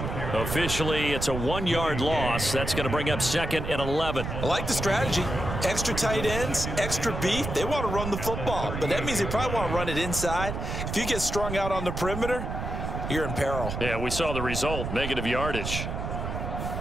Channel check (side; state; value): right; noise; rumble, 5 dB below the sound